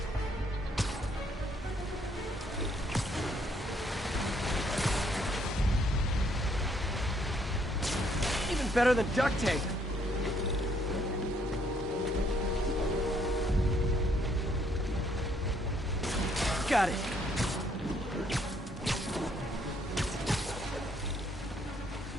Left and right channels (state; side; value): normal; both; correlation 0.68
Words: Even better than duct tape. Got it.